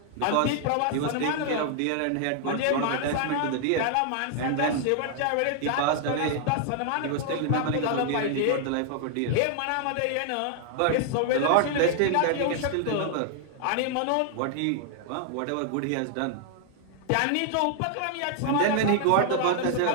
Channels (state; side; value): different; both; correlation 0.00